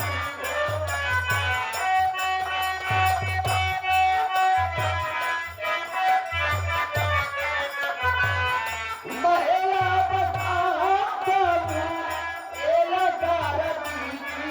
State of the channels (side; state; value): both; identical; correlation 1.00